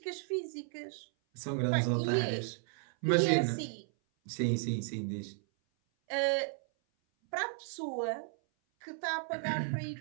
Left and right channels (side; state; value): left; silent; 55 dB below the other